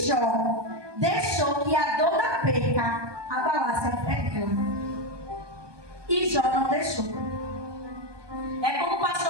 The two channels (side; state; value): left; late; 1.2 ms